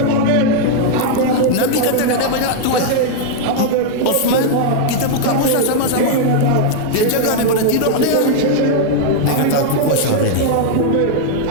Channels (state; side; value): different; both; correlation 0.00